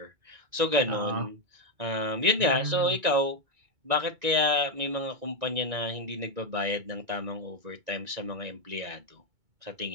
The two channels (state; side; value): late; left; 2.2 ms